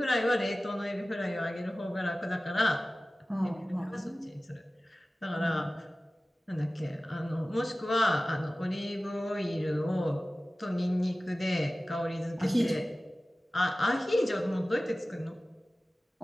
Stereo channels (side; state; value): both; normal; correlation 0.96